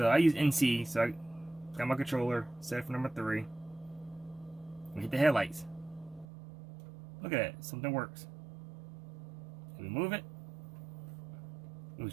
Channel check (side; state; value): left; drops out; at 6.2 s